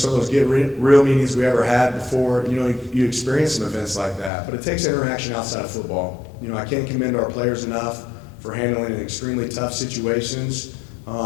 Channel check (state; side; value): drops out; right; at 4.3 s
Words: of those get real meetings we ever had before, you experience some events like that. But it takes interaction outside of football. I can't commend our players enough for handling extremely tough situations